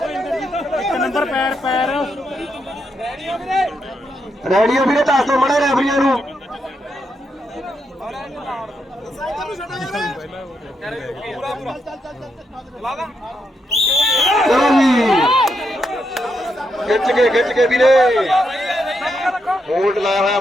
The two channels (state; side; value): normal; both; correlation 0.81